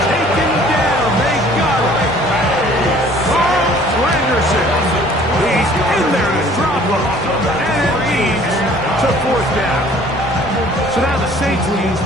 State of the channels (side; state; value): both; normal; correlation 0.54